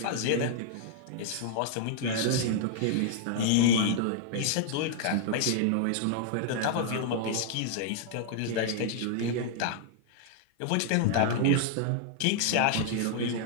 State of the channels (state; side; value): different; both; correlation -0.01